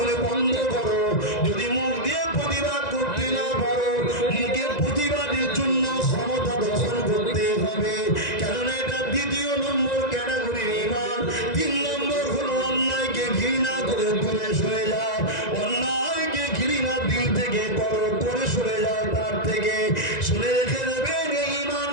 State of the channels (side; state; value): right; late; 1.9 ms